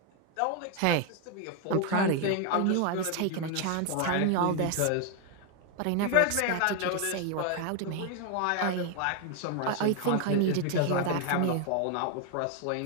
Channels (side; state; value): both; different; correlation 0.01